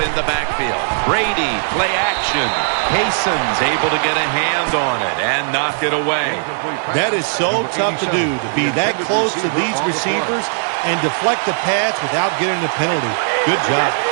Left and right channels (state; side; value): silent; left; 68 dB below the other